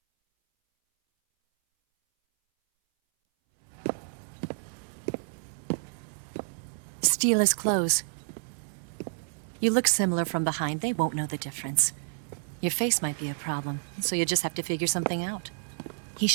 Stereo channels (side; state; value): left; silent; 58 dB below the other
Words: Steal his clothes. You look similar from behind. They won't know the difference. Your face might be a problem, so you just have to figure something out. He